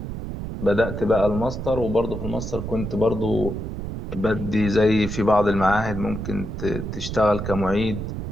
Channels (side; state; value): right; noise; rumble, 6 dB below the sound